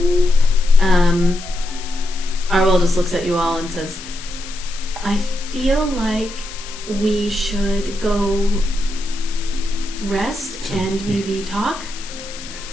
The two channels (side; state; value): left; noise; hiss, 14 dB below the sound